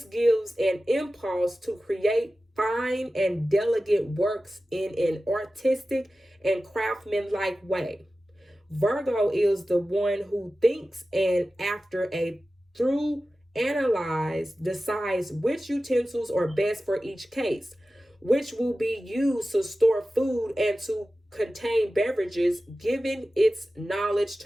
gives an impulse to create fine and delicate works in an artistic and craftsmanlike way. Virgo is the one who thinks and after a through analyze decides which utensils are best for each case, which will be used to store food and to contain beverages, giving its knowledge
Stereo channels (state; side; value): normal; both; correlation 0.95